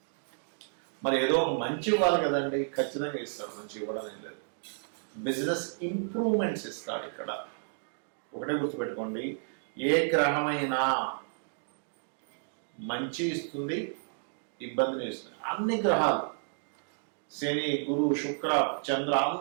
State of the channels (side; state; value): left; silent; digital silence